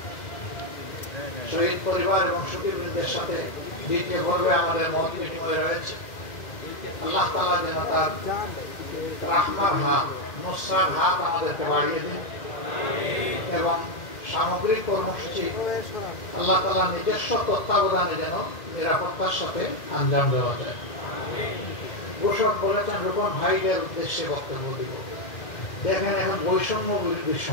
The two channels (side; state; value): right; late; 1.8 ms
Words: শহীদ পরিবার এবং সুধীবৃন্দের সাথে দ্বিতীয় পর্বে আমাদের মত বিনিময় রয়েছে। আল্লাহ তাআলা যেন তার রাহমার হাত, নুসরার হাত আমাদেরকে বাড়িয়ে দিন এবং সামগ্রিক কর্মসূচি আল্লাহ তাআলা নিজস্ব তত্ত্বাবধানে যেন নিরাপত্তার সাথে আঞ্জাম দেওয়া যায়। ঘোষক বলেছেন রূপন ভাইদের উদ্দেশ্যে বক্তব্য দিব। দেখেন এখন বৈষম্য বিরোধীর